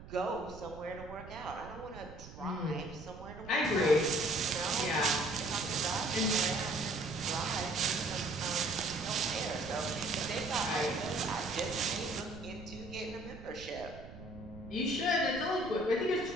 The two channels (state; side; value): noise; right; rumble, 15 dB below the sound